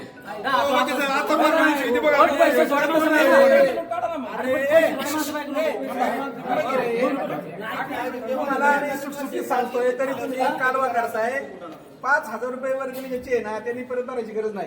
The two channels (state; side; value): identical; both; correlation 1.00